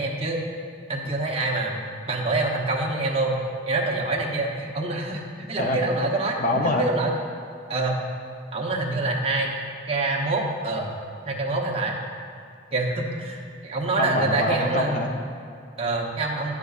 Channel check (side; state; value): both; normal; correlation 0.12